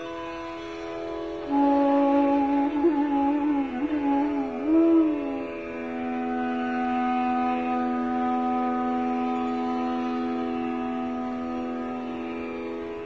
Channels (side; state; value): both; identical; correlation 1.00